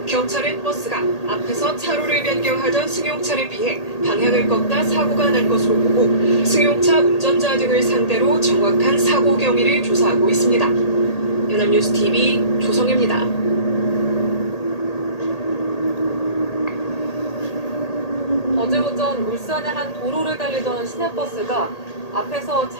경찰은 버스가 앞에서 차로를 변경하던 승용차를 피해 방향을 꺾다 사고가 난 것으로 보고 승용차 운전자 등을 상대로 정확한 사고 경위를 조사하고 있습니다. 연합뉴스 TV 조성입니다. 어제 오전 울산의 한 도로를 달리던 시내버스가 앞에서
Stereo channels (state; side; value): late; right; 1.8 ms